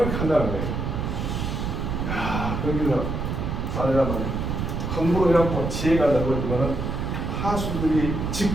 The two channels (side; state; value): right; noise; rumble, 2 dB below the sound